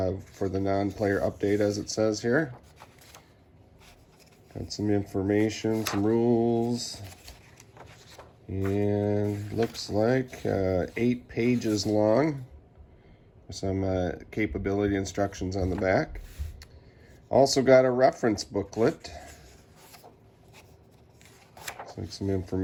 For the non-player update, as it says here. Got some information, some rules, and looks like 8 pages long. Some capability instructions on the back. Also got a reference booklet. Looks like some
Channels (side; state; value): both; identical; correlation 1.00